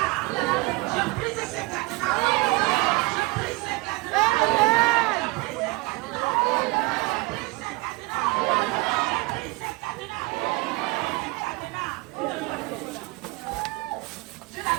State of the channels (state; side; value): quieter; left; 24.0 dB